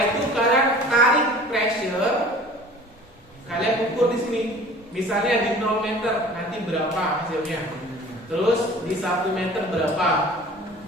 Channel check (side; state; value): both; normal; correlation 0.45